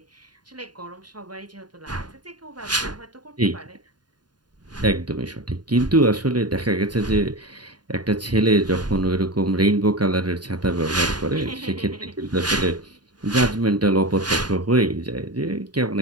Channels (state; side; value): late; left; 0.70 ms